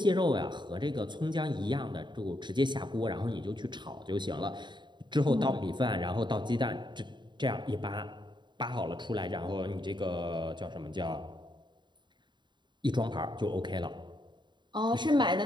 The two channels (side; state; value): left; late; 0.22 ms